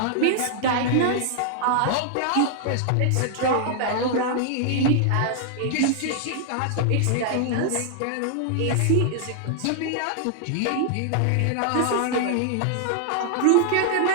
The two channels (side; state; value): both; different; correlation -0.01